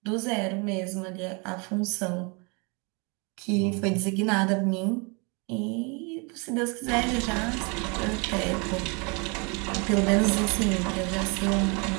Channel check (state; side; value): quieter; left; 32.0 dB